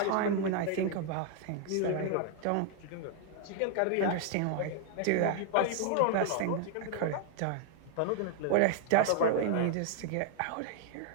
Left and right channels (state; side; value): different; both; correlation 0.00